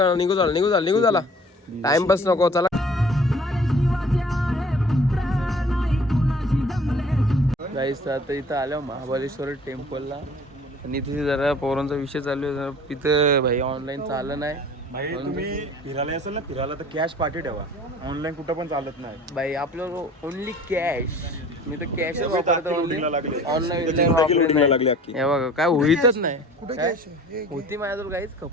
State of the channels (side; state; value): both; normal; correlation 0.48